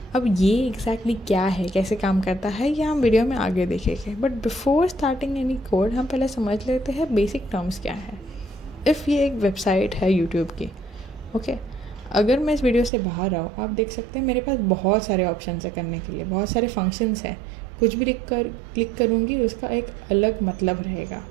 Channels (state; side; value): drops out; left; at 12.9 s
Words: अब ये एग्जैक्टली क्या है, कैसे काम करता है, ये हम वीडियो में आगे देखेंगे। But before starting any code हम पहले समझ लेते हैं बेसिक टर्म्स क्या है। इफ़ ये एक वेबसाइट है यूट्यूब की, ओके, अगर मैं इस वीडियो से बाहर आऊँ, आप देख सकते हैं मेरे पास बहुत सारे ऑप्शन है करने के लिए, बहुत सारे फंक्शंस हैं। कुछ भी क्लिक करूँगी उसका एक अलग मतलब रहेगा।